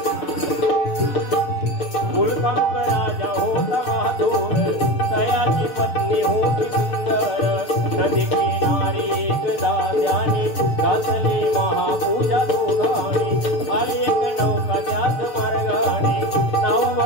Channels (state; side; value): late; right; 6.7 ms